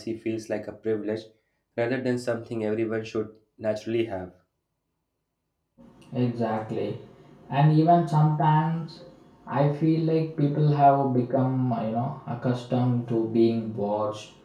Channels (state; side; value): identical; both; correlation 1.00